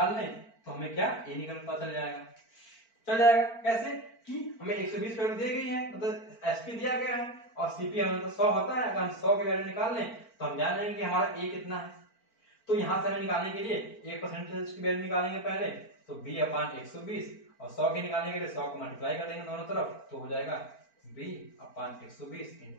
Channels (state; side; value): late; right; 4.4 ms